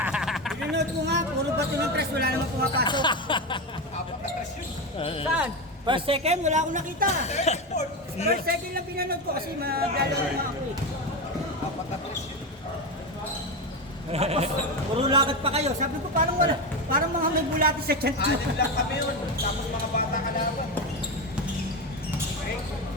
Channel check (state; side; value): normal; both; correlation 0.16